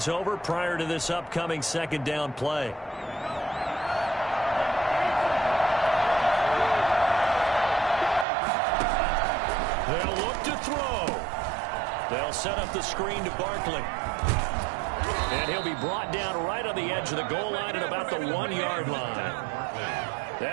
over prior to this upcoming second down play. They'll look to throw. They'll set up the screen to Barkley. And he'll be brought down right on the edge of the goal line at about the 1-yard line.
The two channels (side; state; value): left; drops out; at 8.2 s